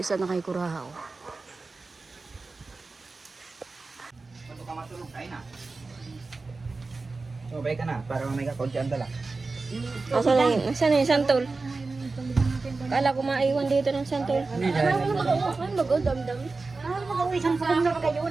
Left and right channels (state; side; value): quieter; left; 3.8 dB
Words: isa na kay Kurahaw. Bago ka matulog, kain na. So, balik ka na, para may kakunti ang dala. Nasaan na yung santol? Kala ko maiwan dito ng santol. Hindi, dahil. Ah, mag-uwi isang pulong na ba